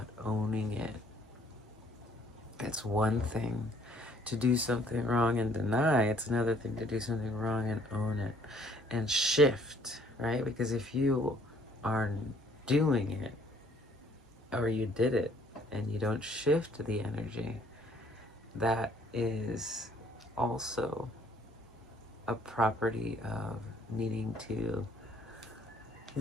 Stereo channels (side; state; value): both; normal; correlation 0.61